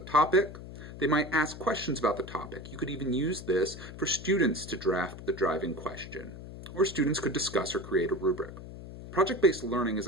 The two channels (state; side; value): noise; left; hum, 13 dB below the sound